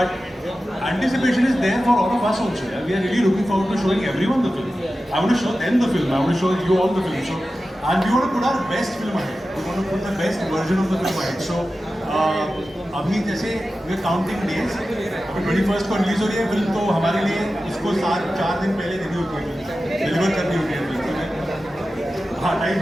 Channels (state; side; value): normal; both; correlation 0.94